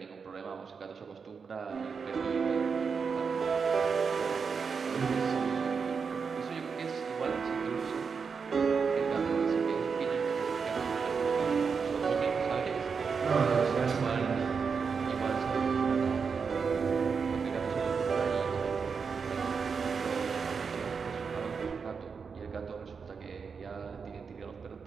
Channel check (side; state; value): left; quieter; 5.6 dB